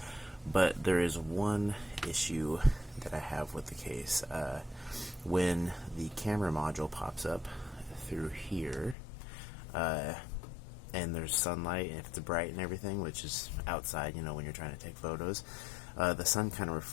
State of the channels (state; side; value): drops out; right; at 9.0 s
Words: But there is one issue that I have with the case. When the camera module pops up through here, and there's sunlight, and if it's bright and everything, which is outside, when you're trying to take photos, the sun kind of